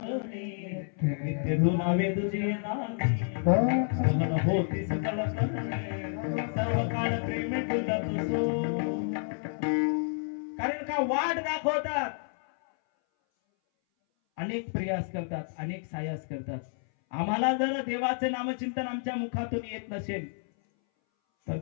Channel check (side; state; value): right; silent; 58 dB below the other